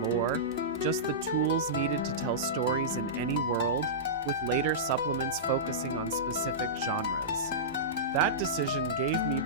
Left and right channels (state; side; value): normal; both; correlation -0.15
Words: lore, just the tools needed to tell stories in any world, with later supplements focusing on specific genres. That decision gave me